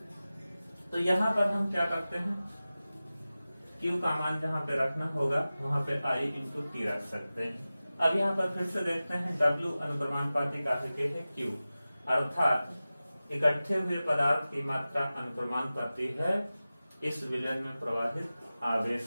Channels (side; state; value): both; inverted; correlation -0.96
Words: तो यहाँ पर हम क्या करते हैं, Q का मान जहाँ पे रखना होगा वहां पे I इंटू टी रख सकते हैं। अब यहाँ पर फिर से देखते हैं, W अनुक्रमानुपाती काहे के है Q, अर्थात इकट्ठे हुए पदार्थ की मात्रा अनुक्रमानुपाती है इस विलयन में प्रवाहित